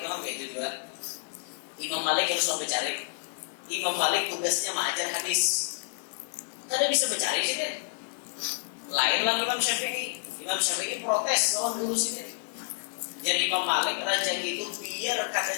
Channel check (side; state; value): right; silent; 58 dB below the other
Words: kayak itu juga. Imam Malik harus mencari. Imam Malik tugasnya mengajar hadis. Kada bisa mencari sih dia. Lain lah Imam Syafi'i. Imam Syafi'i protes lawan guru sini. Jadi Imam Malik rezeki itu biar kada